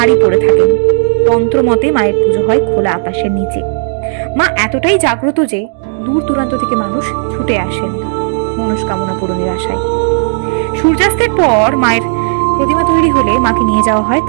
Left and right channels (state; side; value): silent; left; digital silence